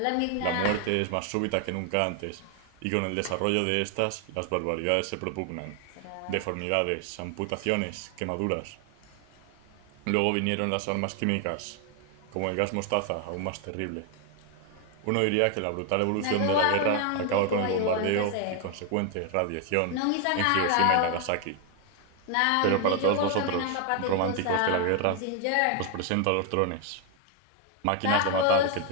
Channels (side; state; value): both; different; correlation 0.01